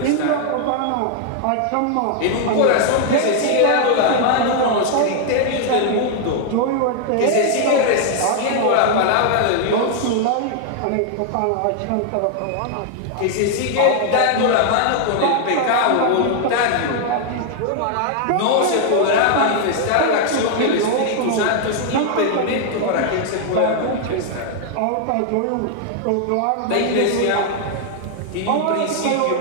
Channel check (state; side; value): different; both; correlation 0.00